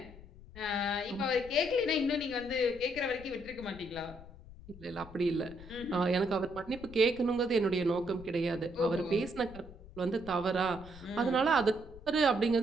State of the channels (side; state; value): left; noise; rumble, 18 dB below the sound